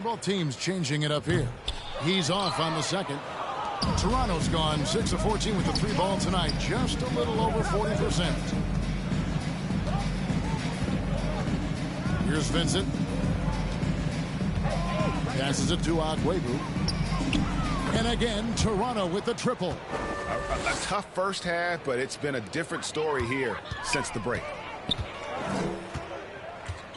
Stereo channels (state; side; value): identical; both; correlation 1.00